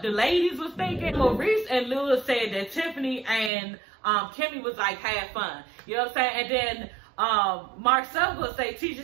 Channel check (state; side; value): drops out; left; at 3.5 s